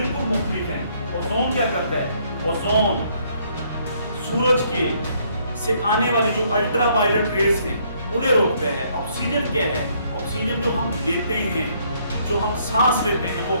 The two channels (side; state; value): both; inverted; correlation -0.67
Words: मुख्तलिफ है। ओजोन क्या करता है? ओजोन सूरज के से आने वाली जो अल्ट्रावायलेट रेज हैं उन्हें रोकते हैं। ऑक्सीजन क्या है? ऑक्सीजन जो हम लेते हैं, जो हम सांस लेते हैं, वो